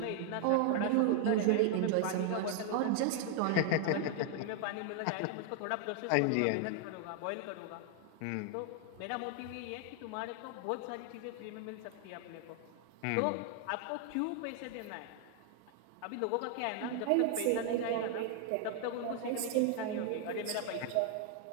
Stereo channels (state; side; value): different; both; correlation 0.00